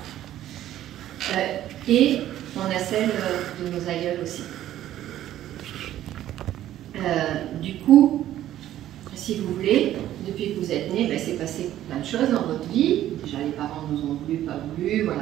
Et on a celle de nos aïeuls aussi. Du coup, si vous voulez, depuis que vous êtes nés, ben, c'est passé plein de choses dans votre vie. Déjà, les parents nous ont voulu, pas voulu,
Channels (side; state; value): left; quieter; 12.7 dB